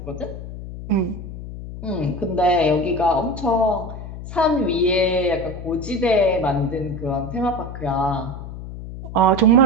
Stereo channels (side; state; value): left; noise; hum, 10 dB below the sound